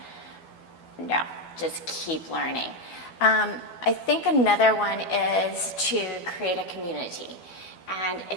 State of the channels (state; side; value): late; right; 12 ms